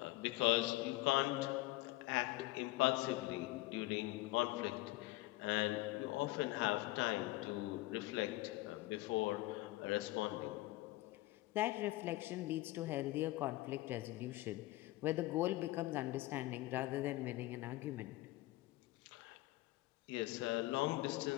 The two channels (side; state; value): right; quieter; 18.7 dB